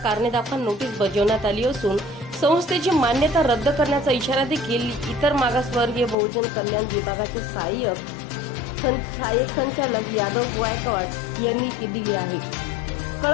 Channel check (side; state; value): right; drops out; at 6.2 s